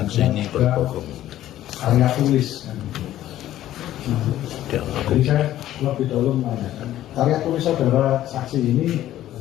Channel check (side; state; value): right; quieter; 13.2 dB